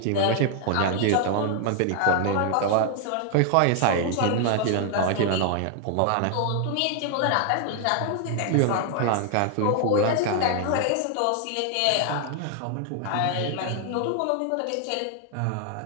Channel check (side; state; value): both; different; correlation 0.00